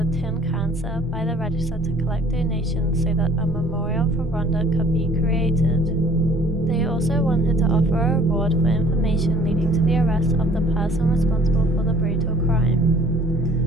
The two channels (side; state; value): both; normal; correlation 0.54